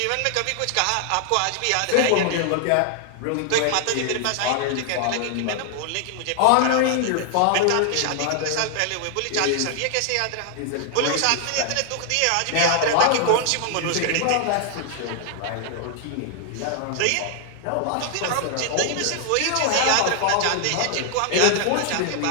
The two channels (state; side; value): different; both; correlation 0.00